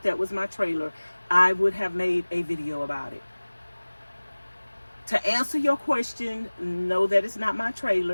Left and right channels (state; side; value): inverted; both; correlation -1.00